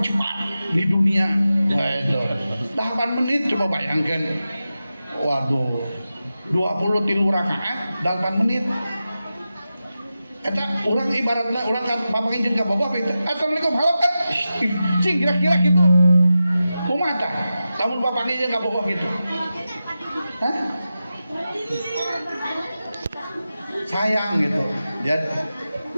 di dunia gitu. 8 menit coba bayangkan. Waduh, 23 rakaat 8 menit. Eta orang ibaratnya orang kan papangin jeung ka boboh itu. Assalamualaikum halo kan. Cing kira-kira gitu. Kumaha tah? Lamun papangin jeung ka boboh gitu. Hah? Sayang gitu. Ya.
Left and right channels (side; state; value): both; inverted; correlation -0.92